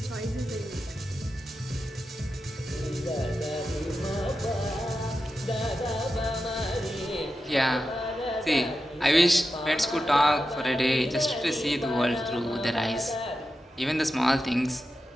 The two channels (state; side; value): normal; both; correlation 0.90